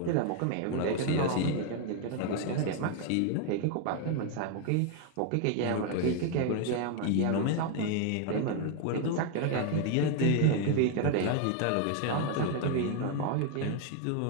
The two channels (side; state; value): both; different; correlation 0.01